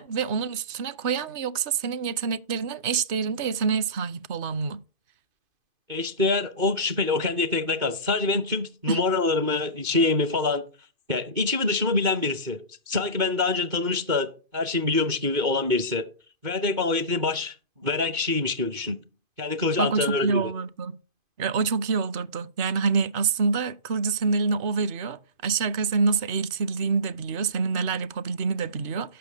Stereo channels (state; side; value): late; left; 2.5 ms